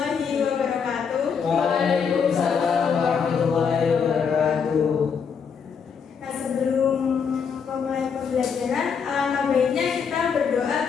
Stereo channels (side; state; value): right; quieter; 6.4 dB